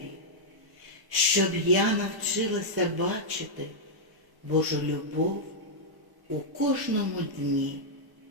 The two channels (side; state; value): left; late; 1.1 ms